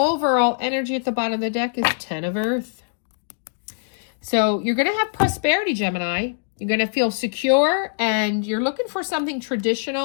Overall energy at the bottom of the deck is 10 of Earth. So you're going to have prosperity, Gemini. You're going to feel secure, and you're looking for something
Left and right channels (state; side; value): silent; right; digital silence